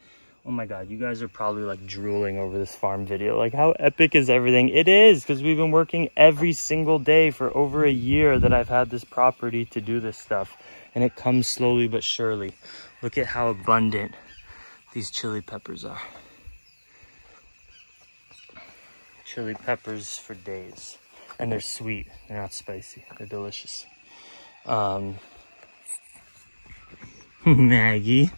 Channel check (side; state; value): both; inverted; correlation -1.00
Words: Oh my God, you guys are probably like drooling over this farm video. Like, how epic is everything? It is, because we've been working every single day for over a year that I've had this property to do this stuff. And it comes slowly but surely. Look at how abundant these chili peppers are. Chili peppers for days. And they're sweet, they're not spicy, they're delicious. Maggie.